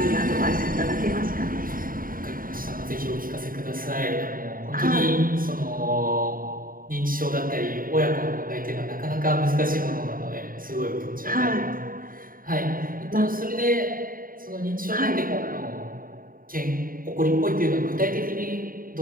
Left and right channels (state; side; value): late; left; 0.41 ms